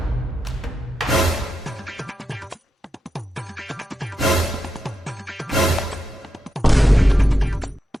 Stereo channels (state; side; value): normal; both; correlation 0.88